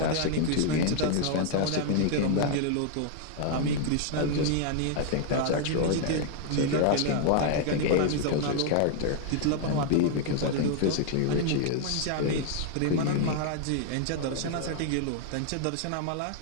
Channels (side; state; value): both; different; correlation 0.00